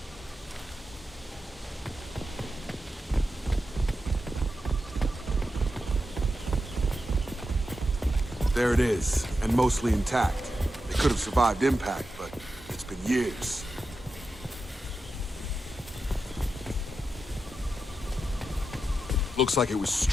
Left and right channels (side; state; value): both; normal; correlation 0.89